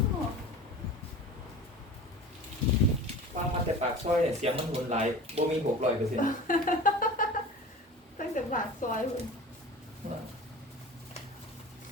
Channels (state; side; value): normal; both; correlation 0.37